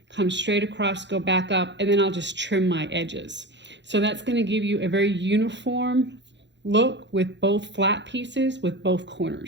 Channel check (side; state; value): left; late; 0.52 ms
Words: come straight across, go back up, and then I'll just trim my edges. So that's going to give you a very uniform look with both flat pieces with both